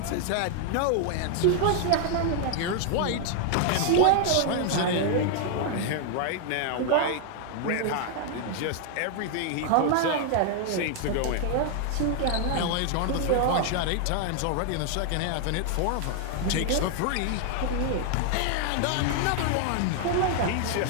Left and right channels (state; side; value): different; both; correlation 0.00